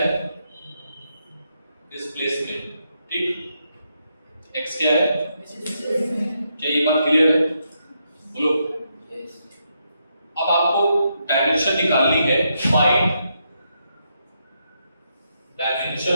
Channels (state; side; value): inverted; both; correlation -0.80